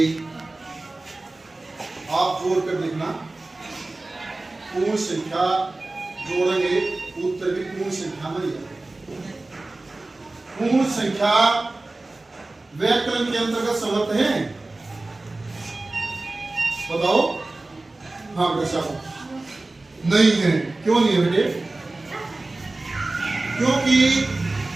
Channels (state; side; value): quieter; left; 3.0 dB